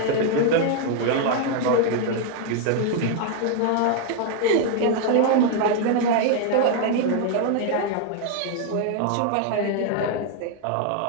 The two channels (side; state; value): both; different; correlation 0.00